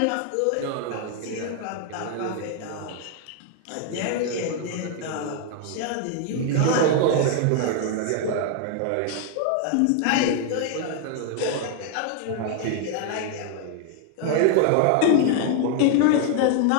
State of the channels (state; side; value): different; both; correlation 0.00